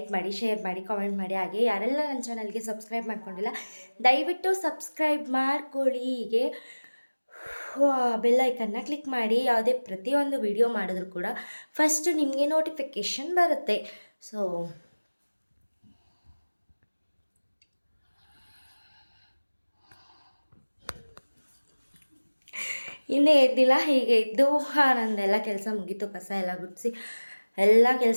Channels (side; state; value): both; inverted; correlation -1.00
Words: ಮಾಡಿ, ಶೇರ್ ಮಾಡಿ, ಕಾಮೆಂಟ್ ಮಾಡಿ. ಹಾಗೆ ಯಾರೆಲ್ಲ ನನ್ನ ಚಾನಲ್ಗೆ ಸಬ್ಸ್ಕ್ರೈಬ್ ಮಾಡ್ಕೊಂಡಿಲ್ಲ ದಯವಿಟ್ಟು ಸಬ್ಸ್ಕ್ರೈಬ್ ಮಾಡ್ಕೊಳ್ಳಿ. ಹೀಗೆ ಬೆಲ್ ಐಕನ್ನ ಕ್ಲಿಕ್ ಮಾಡಿ. ಯಾವುದೇ ಪ್ರತಿಯೊಂದು ವಿಡಿಯೋ ಮಾಡಿದ್ರು ಕೂಡ ಫಸ್ಟ್ ನಿಮಗೆ ನೋಟಿಫಿಕೇಷನ್ ಬರುತ್ತೆ. ಸೊ ಇನ್ನೇ ಎದ್ದಿಲ್ಲ. ಹೀಗೆ ಇದ್ದು ನಂದೆಲ್ಲ ಕೆಲಸ ಮುಗೀತು. ಕಸ ಎಲ್ಲ ಗುಡಿಸಿ ಎಲ್ಲ